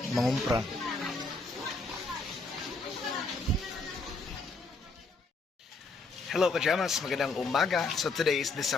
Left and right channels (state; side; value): quieter; right; 3.6 dB